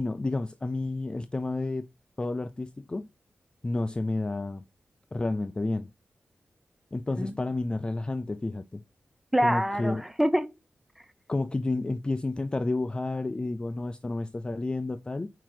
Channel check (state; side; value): normal; both; correlation 0.98